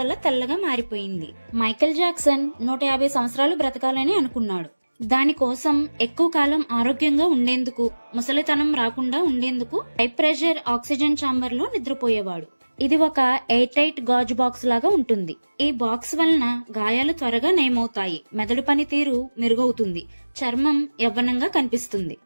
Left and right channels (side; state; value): both; inverted; correlation -1.00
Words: తెల్లగా మారిపోయింది. మైకేల్ జాక్సన్ 150 సంవత్సరాలు బ్రతకాలని అనుకున్నాడు. దానికోసం ఎక్కువ కాలం ఆరోగ్యంగా ఉండేందుకు, ముసలితనం రాకుండా ఉండేందుకు హై ప్రెషర్ ఆక్సిజన్ ఛాంబర్ లో నిద్రపోయేవాడు. ఇది ఒక ఎయిర్ టైట్ గాజు బాక్స్ లాగా ఉంటుంది. ఈ బాక్స్ వలన గాయాలు త్వరగా నయమవుతాయి, మెదడు పనితీరు మెరుగవుతుంది, చర్మం యవ్వనంగా కనిపిస్తుంది,